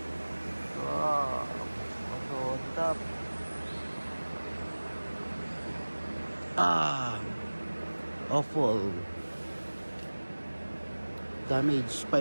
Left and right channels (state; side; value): inverted; both; correlation -1.00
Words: Also top. Awful. Damage